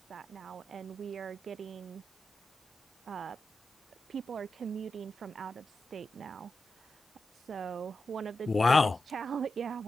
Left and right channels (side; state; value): both; normal; correlation 0.90